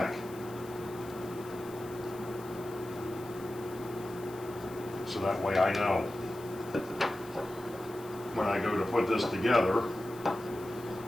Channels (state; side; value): noise; left; hiss, 20 dB below the sound